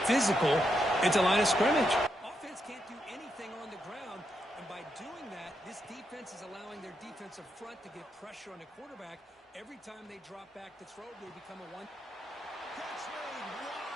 physical at the line of scrimmage. Offense can't do anything on the ground, and by doing that, this defense is allowing their defensive front to get pressure on the quarterback. Every time they drop back to throw, they become a one. Catch made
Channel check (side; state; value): both; normal; correlation 0.82